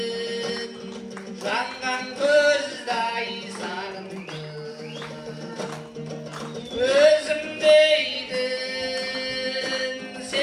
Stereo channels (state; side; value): identical; both; correlation 1.00